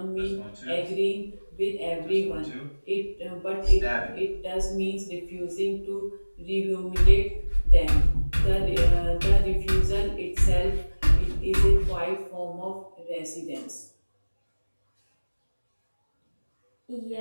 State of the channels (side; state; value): both; inverted; correlation -1.00